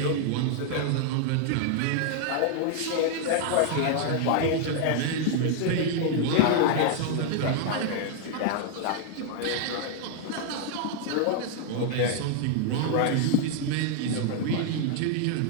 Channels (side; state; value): both; different; correlation 0.00